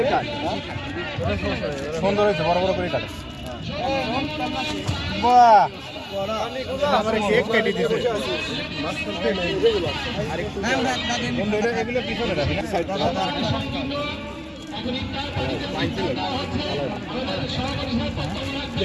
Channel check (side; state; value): both; identical; correlation 1.00